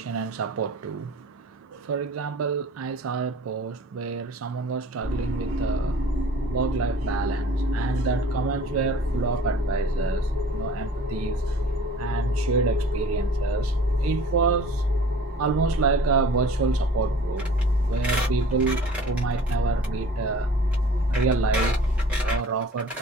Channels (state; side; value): normal; both; correlation 0.46